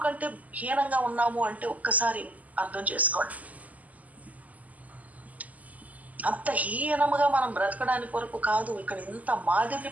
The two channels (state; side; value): late; left; 0.076 ms